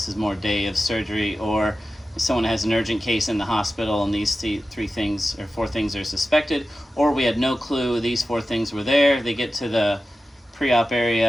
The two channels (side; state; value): both; normal; correlation 0.93